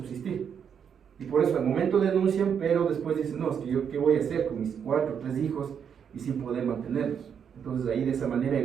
Y por eso al momento denuncian, pero después dicen, no, es que yo qué voy a hacer con mis 4 o 3 hijos y sin poder mantenerlos. Entonces ahí de esa manera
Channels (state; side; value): quieter; left; 7.6 dB